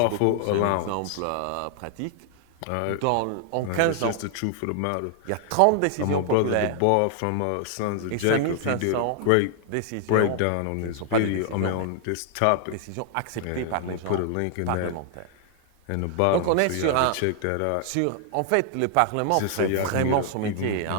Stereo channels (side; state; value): both; different; correlation 0.00